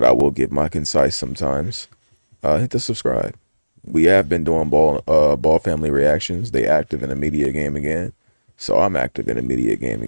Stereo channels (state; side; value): inverted; both; correlation -1.00